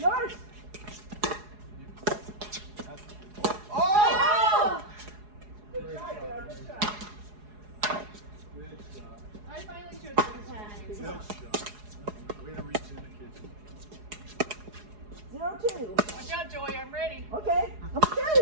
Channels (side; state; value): left; late; 4.8 ms